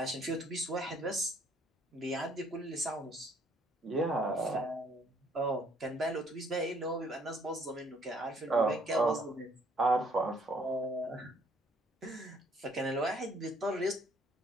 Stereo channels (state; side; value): normal; both; correlation 0.63